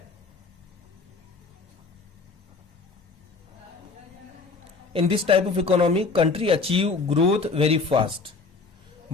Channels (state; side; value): quieter; right; 4.2 dB